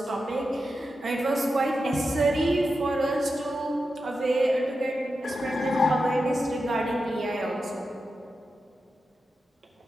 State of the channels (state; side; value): normal; both; correlation 0.90